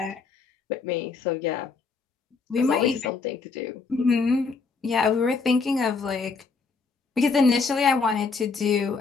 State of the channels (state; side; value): quieter; right; 4.7 dB